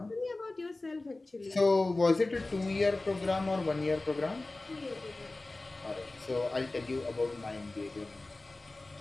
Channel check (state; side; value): quieter; right; 3.0 dB